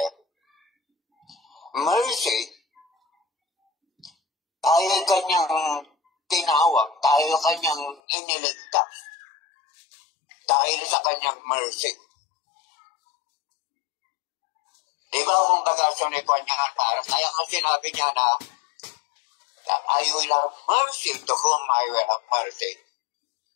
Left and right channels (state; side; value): drops out; right; at 8.0 s